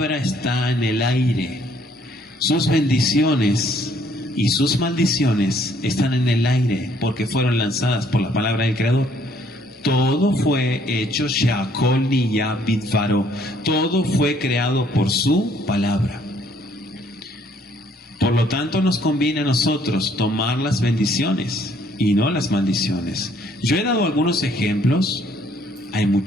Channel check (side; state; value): both; normal; correlation 0.64